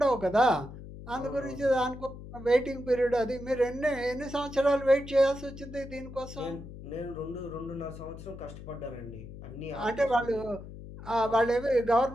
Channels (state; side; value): noise; left; hum, 13 dB below the sound